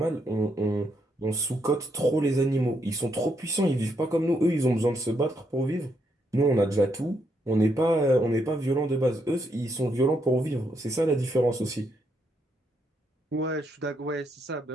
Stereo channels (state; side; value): normal; both; correlation 0.77